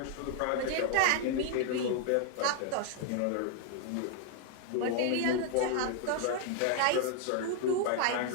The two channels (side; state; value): both; different; correlation 0.00